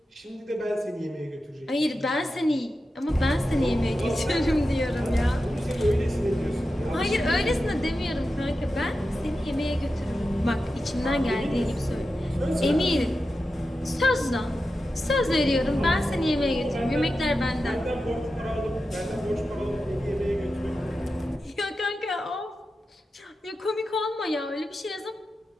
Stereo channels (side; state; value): both; normal; correlation 0.91